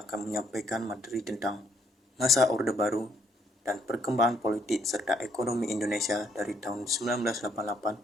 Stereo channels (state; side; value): normal; both; correlation 0.69